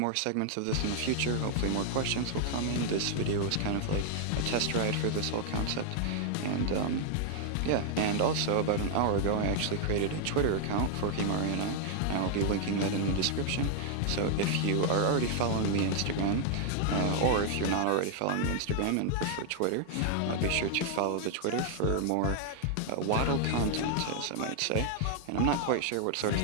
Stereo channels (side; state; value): both; different; correlation 0.00